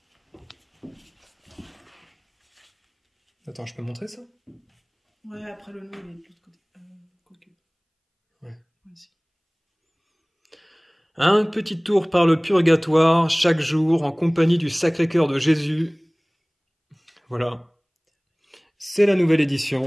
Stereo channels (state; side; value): identical; both; correlation 1.00